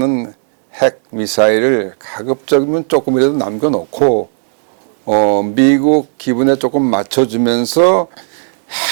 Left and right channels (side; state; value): left; silent; digital silence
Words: 핵 미사일을 가급적이면 조금이라도 남겨놓고 미국 기분에 조금 맞춰주면서